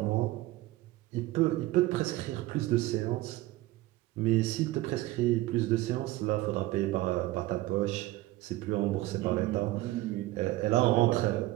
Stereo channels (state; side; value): quieter; left; 17.3 dB